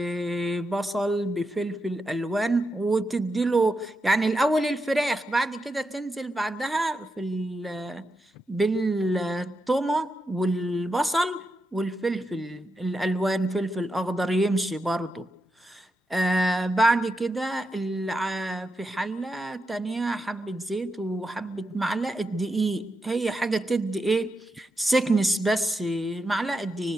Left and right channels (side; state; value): both; normal; correlation 0.86